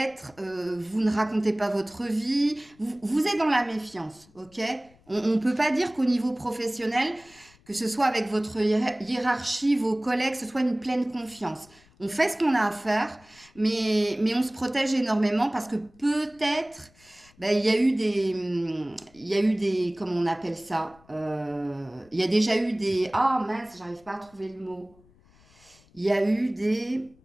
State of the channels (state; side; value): noise; left; rumble, 29 dB below the sound